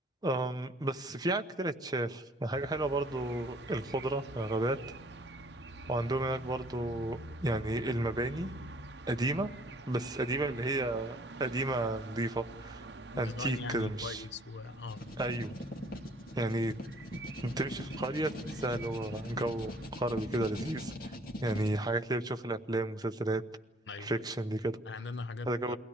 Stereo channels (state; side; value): normal; both; correlation 0.58